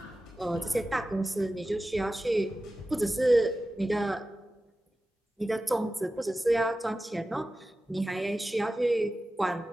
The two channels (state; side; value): normal; both; correlation 0.94